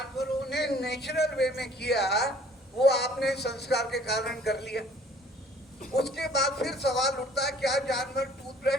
ने नेचुरल वे में किया वो आपने संस्कार के कारण कर लिया। उसके बाद फिर सवाल उठता है, क्या जानवर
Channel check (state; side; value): normal; both; correlation 0.55